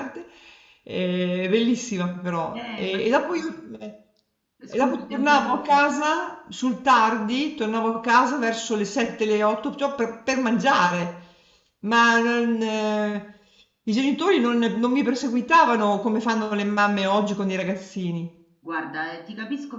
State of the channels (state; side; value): identical; both; correlation 1.00